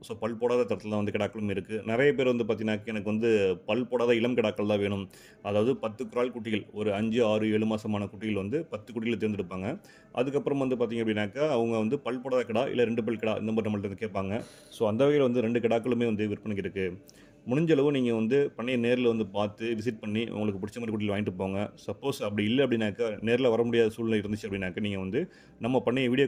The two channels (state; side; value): identical; both; correlation 1.00